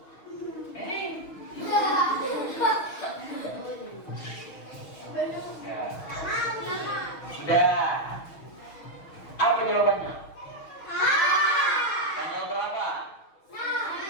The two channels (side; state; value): right; late; 6.3 ms